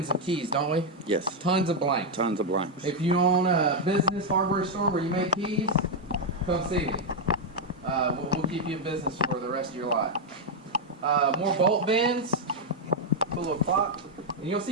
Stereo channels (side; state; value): both; normal; correlation 0.01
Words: of keys, don't we? Yes. Tons of blanks. Tons of blanks. If you own a business hardware store where you make keys, come see me. We'll keep you in business for the rest of your life. More bolt bends. Put a little clock. And you'll